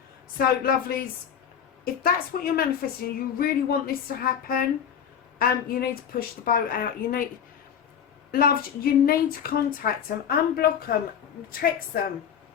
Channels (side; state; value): right; quieter; 8.2 dB